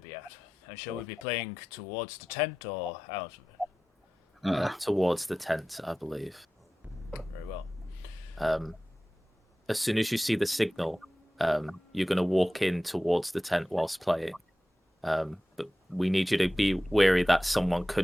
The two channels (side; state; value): both; normal; correlation 0.95